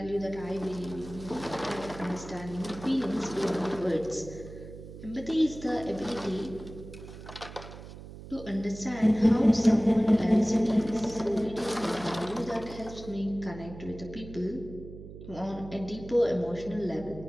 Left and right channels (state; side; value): noise; right; hum, 14 dB below the sound